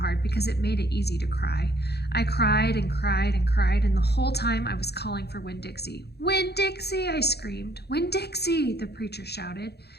because it made it easy to cry. I cried and cried and cried, and the whole time I was calling for Winn-Dixie. "Winn-Dixie!" I screamed. "Winn-Dixie!" the preacher shouted.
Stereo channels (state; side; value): late; right; 0.48 ms